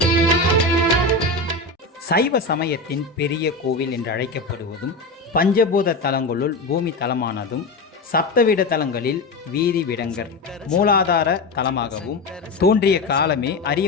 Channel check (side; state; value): right; quieter; 3.1 dB